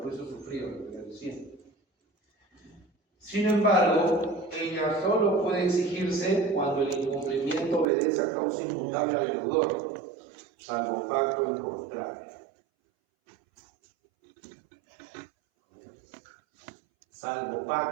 sufridos, como les decía. Sin embargo, ella solo puede exigirse cuando el incumplimiento obedece a causa inmutable al deudor, salvo pacto en contrario. salvo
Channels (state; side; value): drops out; left; at 7.9 s